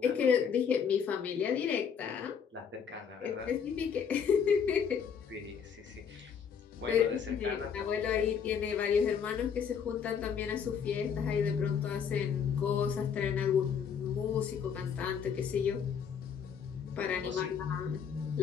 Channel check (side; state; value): right; quieter; 7.1 dB